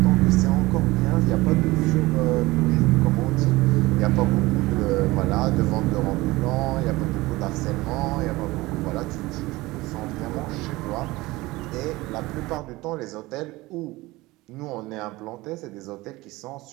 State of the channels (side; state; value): left; quieter; 20.3 dB